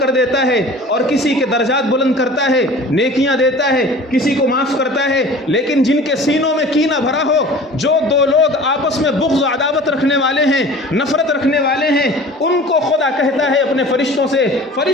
دیتا ہے اور کسی کے درجات بلند کرتا ہے, نیکیاں دیتا ہے, کسی کو معاف کرتا ہے. لیکن جن کے سینوں میں کینہ بھرا ہو, جو دو لوگ آپس میں بغض و عداوت رکھنے والے ہیں, نفرت رکھنے والے ہیں, ان کو خدا کہتا ہے اپنے فرشتوں سے,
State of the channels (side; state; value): both; normal; correlation 0.43